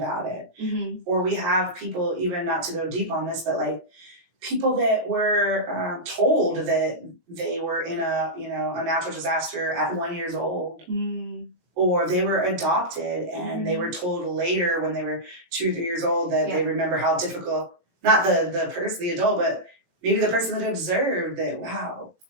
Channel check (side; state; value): left; late; 18 ms